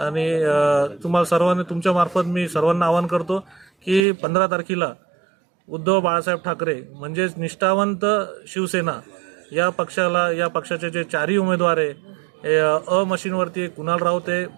तुम्हाला सर्वांनी तुमच्या मार्फत मी सर्वांना आवाहन करतो की 15 तारखेला उद्धव बाळासाहेब ठाकरे म्हणजेच निष्ठावंत शिवसेना या पक्षाचे जे 4ही उमेदवार आहे अ मशीनवरती कुणाल राऊत आहे,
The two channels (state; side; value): drops out; left; at 4.0 s